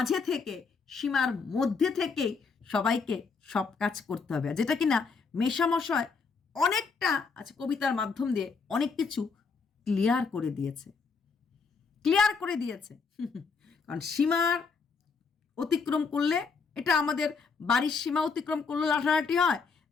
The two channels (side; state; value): right; quieter; 5.0 dB